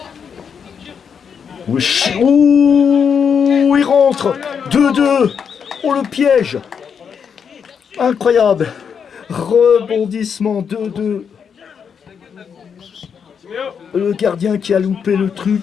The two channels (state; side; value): quieter; right; 6.9 dB